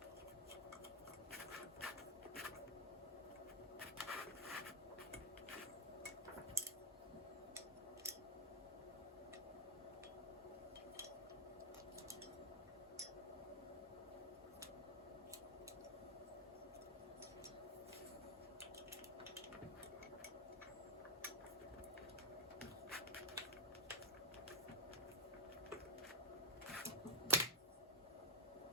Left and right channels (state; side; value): normal; both; correlation -0.07